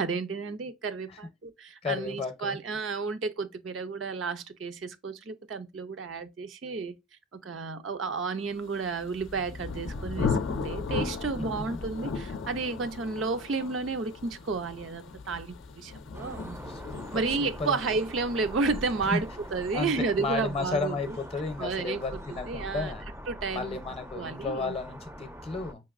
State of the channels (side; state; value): both; normal; correlation 0.31